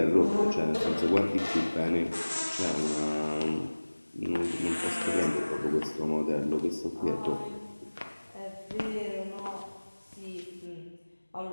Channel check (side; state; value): both; inverted; correlation -1.00